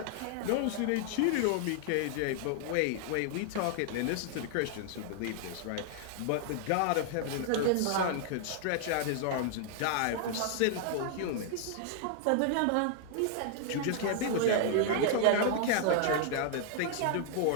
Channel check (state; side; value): different; both; correlation 0.00